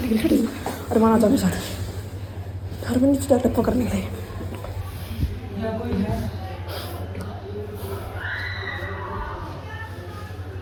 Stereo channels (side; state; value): both; identical; correlation 1.00